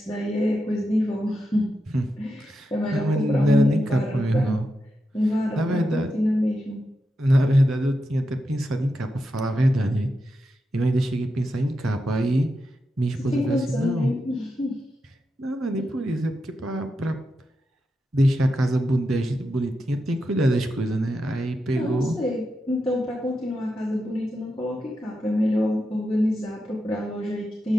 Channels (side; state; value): both; normal; correlation 0.87